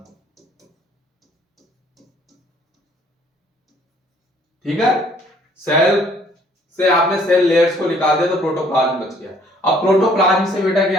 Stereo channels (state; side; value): normal; both; correlation 0.60